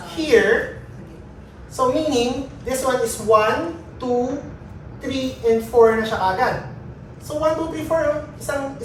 here, so meaning, this one is 1, 2, 3, and 4 na siya agad. So 1, 2, 3, 4,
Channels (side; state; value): both; identical; correlation 1.00